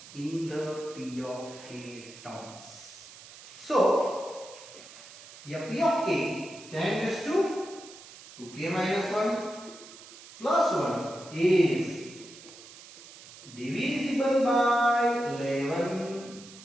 in the p of k terms. So, here p of k, 10 raised to 2k minus 1 plus 1 is divisible by 11.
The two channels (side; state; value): right; noise; hiss, 18 dB below the sound